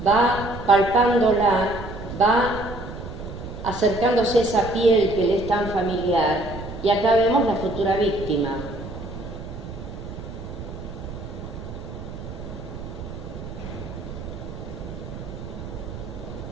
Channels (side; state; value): right; noise; rumble, 10 dB below the sound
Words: va palpándola, va acercándose a esa piel que le es tan familiar, y acá vemos la futura víctima.